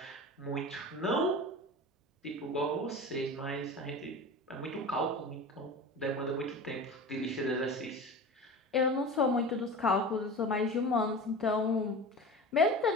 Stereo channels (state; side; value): normal; both; correlation 0.33